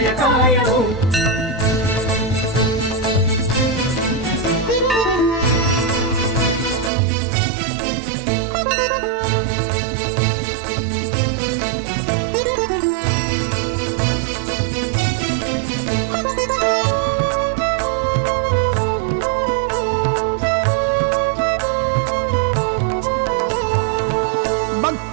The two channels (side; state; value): left; drops out; at 6.9 s